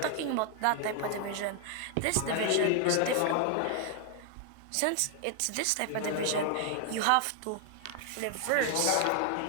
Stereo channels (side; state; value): both; different; correlation 0.00